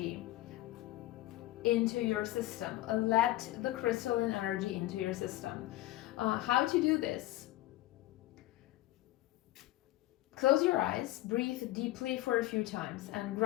into your system. Let the crystalline energy into your system. How to do this? Close your eyes, breathe deeply for a few times, and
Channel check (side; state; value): right; quieter; 16.7 dB